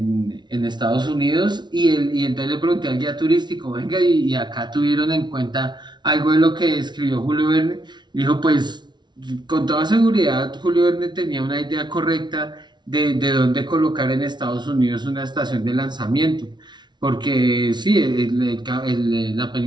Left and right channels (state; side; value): late; left; 0.21 ms